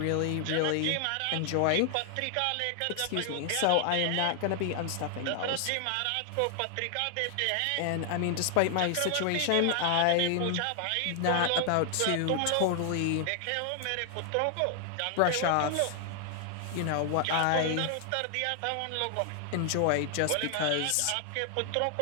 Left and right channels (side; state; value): both; different; correlation 0.00